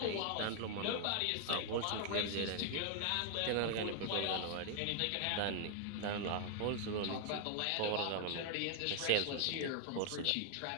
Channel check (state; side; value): different; both; correlation 0.00